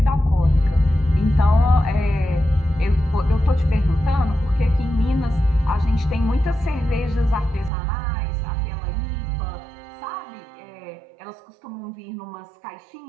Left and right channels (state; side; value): drops out; left; at 7.7 s